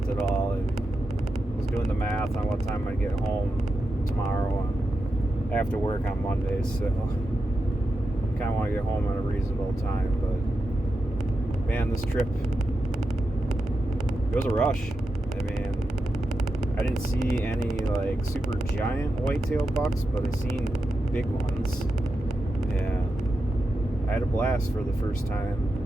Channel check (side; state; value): both; normal; correlation 0.88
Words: at all. I was doing the math on what time I'd get home tomorrow, and I have to work on Mondays, so kind of want to get home at a reasonable time. But man, this trip, it was a rush. I mean, I didn't see any like super giant whitetail bucks, but I seen big ones, and I had a blast for the first